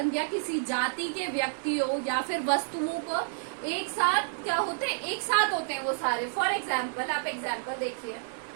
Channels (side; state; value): left; silent; digital silence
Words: किसी जाति के व्यक्तियों या फिर वस्तुओं को एक साथ क्या होते हैं? एक साथ होते हैं वो सारे। फॉर एग्जाम्पल, आप एग्जाम्पल देखिए,